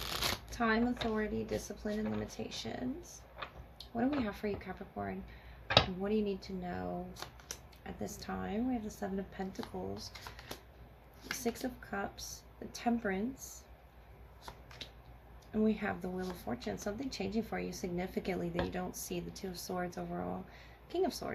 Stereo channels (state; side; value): identical; both; correlation 1.00